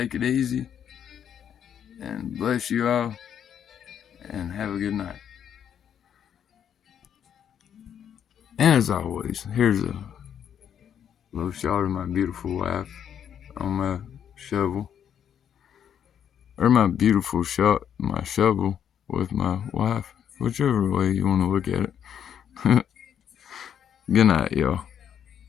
it easy. And bless you all. And have a good night. And as always, here's a little shot of my beautiful wife on my shovel. Or my beautiful shot, my shovel with my wife. Whichever way you want to look at it. Good night, y'all.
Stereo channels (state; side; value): quieter; right; 8.9 dB